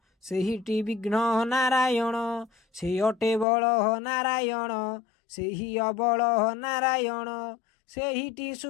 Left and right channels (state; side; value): drops out; right; at 3.5 s